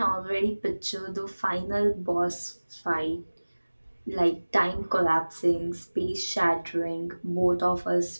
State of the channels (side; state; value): both; inverted; correlation -1.00